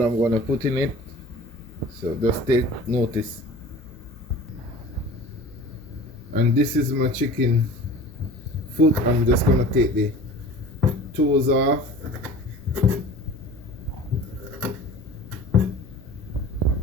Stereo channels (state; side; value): normal; both; correlation 0.41